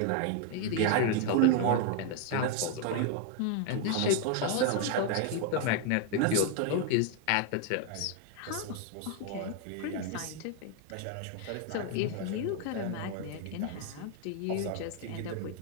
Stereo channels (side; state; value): both; different; correlation 0.00